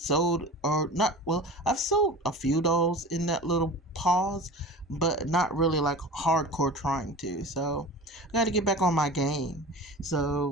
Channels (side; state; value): both; normal; correlation 0.35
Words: or not. Well, I've sold a few dolls in that little pause, but not really like hardcore trying to. So, I got to get back on my game.